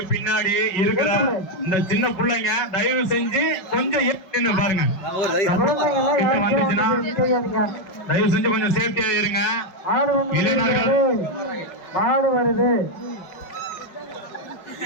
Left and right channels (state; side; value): late; right; 5.1 ms